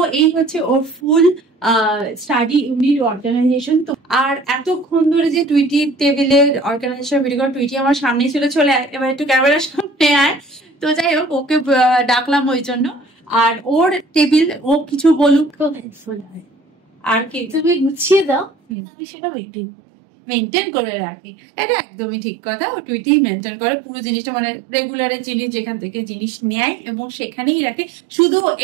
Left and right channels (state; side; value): drops out; left; at 18.8 s